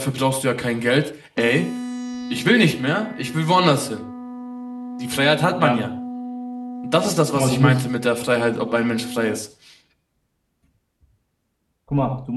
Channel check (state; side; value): identical; both; correlation 1.00